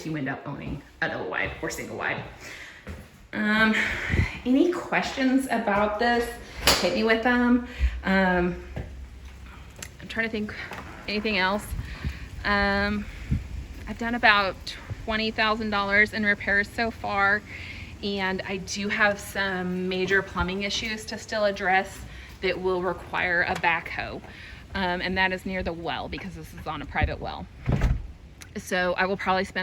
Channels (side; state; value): both; identical; correlation 1.00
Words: you end up owning a double wide or single wide. Any questions about this? Hit me with them. I'm trying to think anything else. I've done about $20,000 in repairs so far, and I do have some major plumbing issues to still address that will require a backhoe. And that is near the well, because this is on a private well. So I will probably